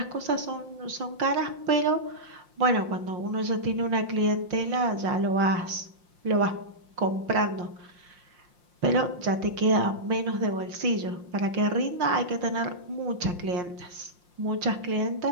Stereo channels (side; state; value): left; late; 5.7 ms